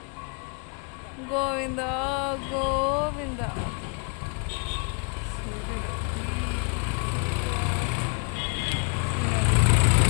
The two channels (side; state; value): right; quieter; 37.6 dB